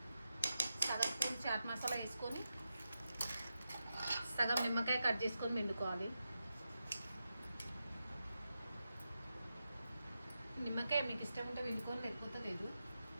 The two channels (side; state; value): both; inverted; correlation -0.89